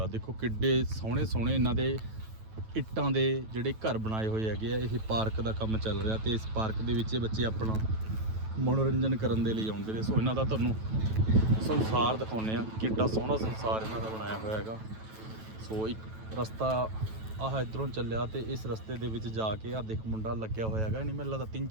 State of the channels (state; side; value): late; left; 9.2 ms